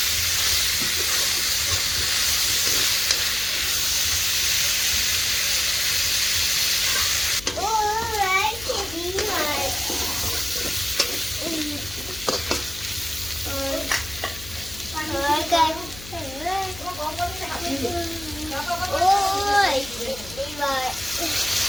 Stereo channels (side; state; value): left; noise; hum, 16 dB below the sound